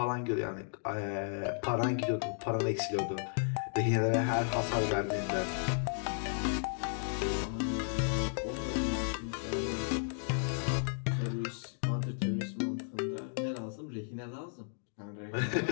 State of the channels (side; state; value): right; silent; digital silence